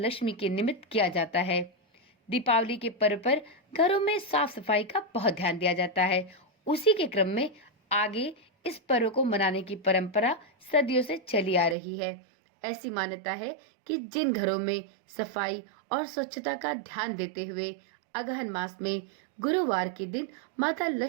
के निमित्त किया जाता है। दीपावली के पर्व पर घरों में साफ सफाई का बहुत ध्यान दिया जाता है। उसी के क्रम में आगे इस पर्व को मनाने की परंपरा सदियों से चली आ रही है। ऐसी मान्यता है कि जिन घरों में सफाई और स्वच्छता का ध्यान देते हुए अगहन मास में गुरुवार के दिन माता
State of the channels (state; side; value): drops out; left; at 11.8 s